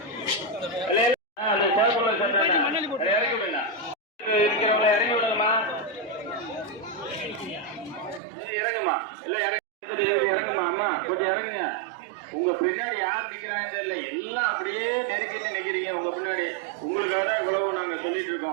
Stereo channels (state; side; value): drops out; left; at 8.2 s